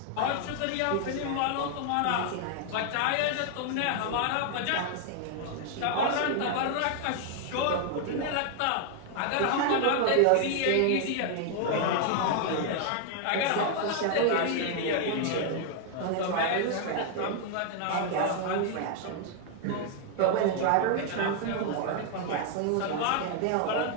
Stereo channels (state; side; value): different; both; correlation 0.00